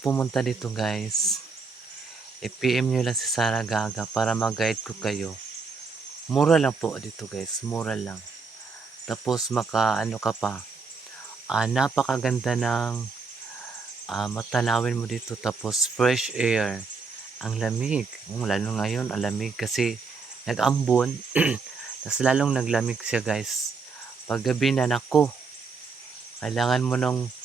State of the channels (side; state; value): left; quieter; 4.6 dB